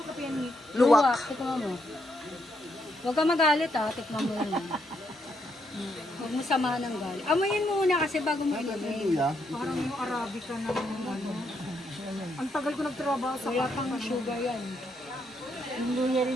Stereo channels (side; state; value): both; normal; correlation 0.77